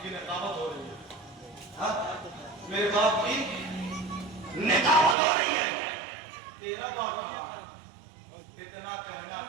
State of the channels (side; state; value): left; drops out; at 5.2 s